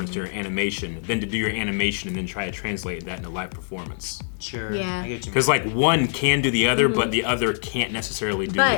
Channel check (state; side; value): silent; right; digital silence